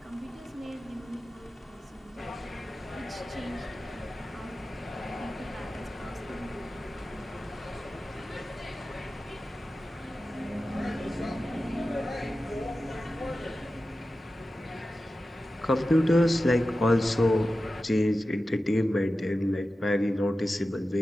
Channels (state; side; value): normal; both; correlation 0.93